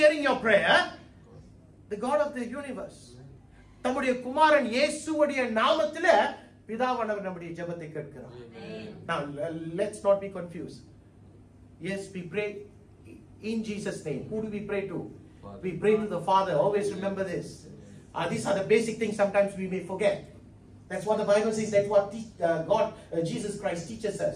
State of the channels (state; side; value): identical; both; correlation 1.00